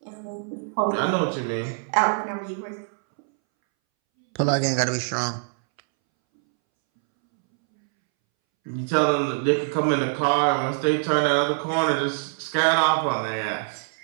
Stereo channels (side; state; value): left; silent; 63 dB below the other